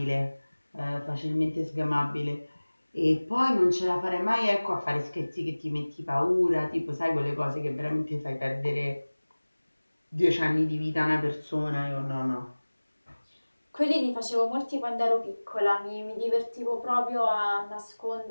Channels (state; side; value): inverted; both; correlation -1.00